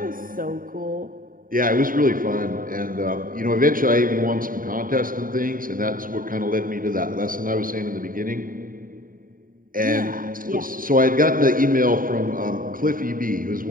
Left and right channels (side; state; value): left; late; 0.41 ms